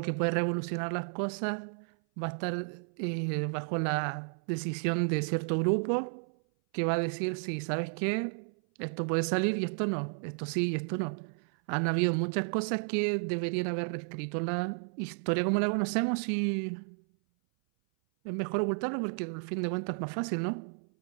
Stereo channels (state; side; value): silent; left; 56 dB below the other